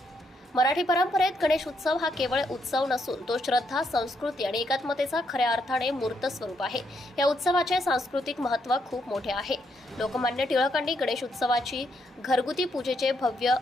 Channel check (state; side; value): normal; both; correlation 0.77